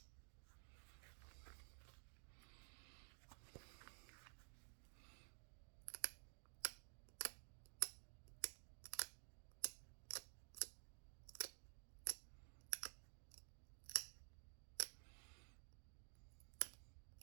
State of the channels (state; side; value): silent; left; digital silence